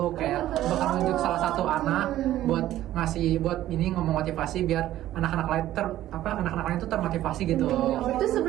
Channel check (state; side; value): quieter; left; 13.6 dB